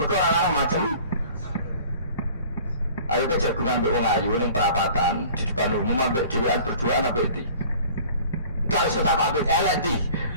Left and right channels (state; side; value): inverted; both; correlation -0.48